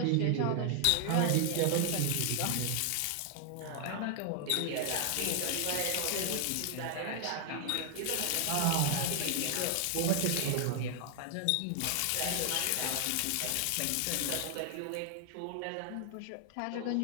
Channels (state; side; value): different; both; correlation 0.00